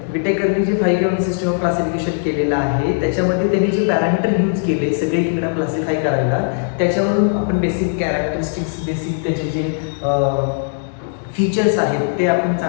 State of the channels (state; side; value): silent; right; digital silence